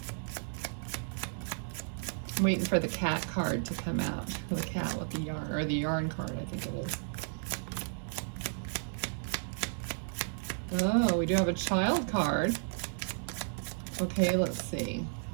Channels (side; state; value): left; silent; digital silence